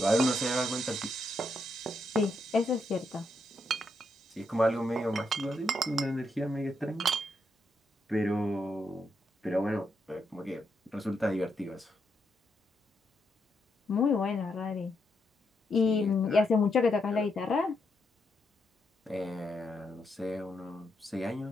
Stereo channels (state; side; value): normal; both; correlation 0.80